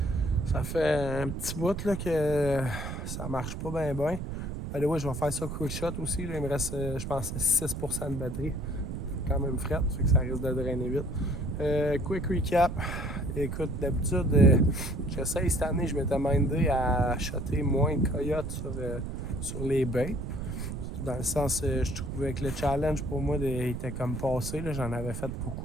Ça fait un petit bout là, que ça marche pas bien bien. Ouais, je vais faire ça quick shot aussi. Là. Il me reste, je pense, 6% de batterie. Quand même fret, fait que ça risque de drainer vite. Quick recap. Écoute, d'habitude, j'essaye cette année, je m'étais mindé à shotter moins de coyotes sur les baits. Dans le sens, je trouvais que le challenge pour moi était comme passé. Là. J'en avais fait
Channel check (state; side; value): noise; right; rumble, 6 dB below the sound